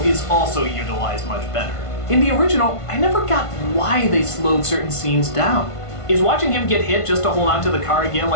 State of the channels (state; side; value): late; right; 1.5 ms